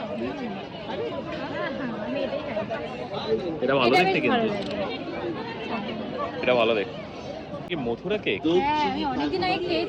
আমি এটাই খাই। এটা ভালো এটা দেখতে বেশ কিন্তু ভালো লাগে। এটা ভালো দেখতে কি মথুরা কেক হ্যাঁ আমি অনেকদিন আগে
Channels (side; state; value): both; identical; correlation 1.00